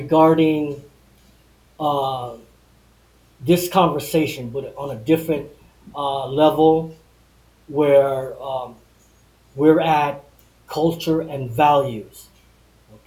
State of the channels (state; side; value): identical; both; correlation 1.00